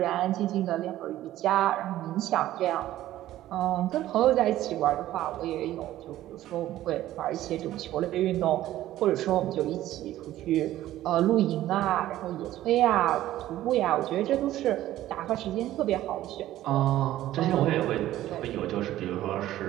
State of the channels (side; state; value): left; quieter; 14.1 dB